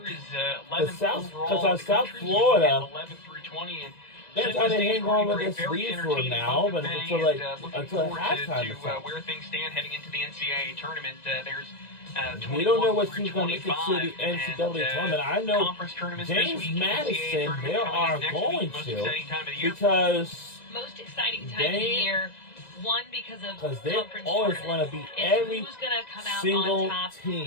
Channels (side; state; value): right; late; 1.9 ms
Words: Is 11th overall. Because South Florida, 11 through 20, and they're trying to hang on with this lead for now, but until halftime or so. Where things stand heading into the NCAA tournament, there's we don't know what team's going to make it to the NCAA tournament. I know James Madison, they are going to, because most exciting time of the year. One, because they always want to beat every single